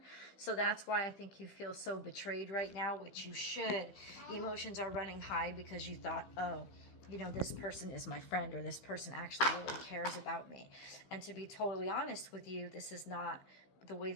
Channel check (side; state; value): right; late; 15 ms